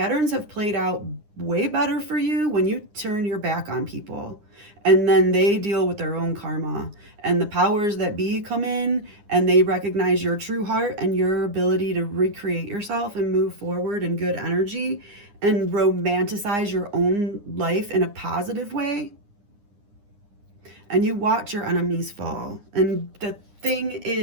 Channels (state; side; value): late; left; 9.8 ms